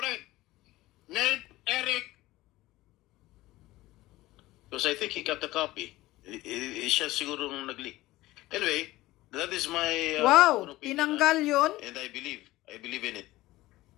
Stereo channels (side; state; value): right; quieter; 17.8 dB